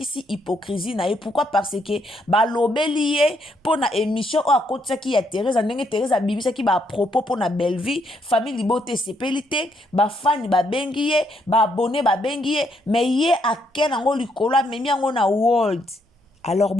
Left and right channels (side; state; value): both; normal; correlation 0.74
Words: hypocrisie na ye. Pourquoi? Parce que ba lobeli ye po na émission o akotisa ki ya Thérèse ndenge Thérèse abimisa ki ba propos po na Belleville famille libote sepeli te ba fan ba bengi ye ba abonné ba bengi ye mais ye aken ngo likolo memi ngo na world. Alors